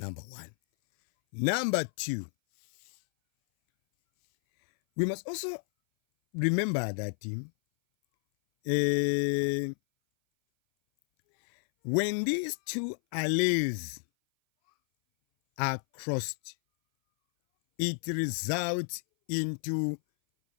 1. Number 2, we must also remember that when these 2 alleles are crossed, it results into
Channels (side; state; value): right; silent; 57 dB below the other